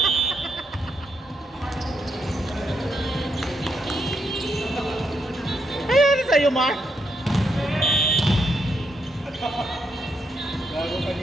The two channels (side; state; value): both; normal; correlation 0.79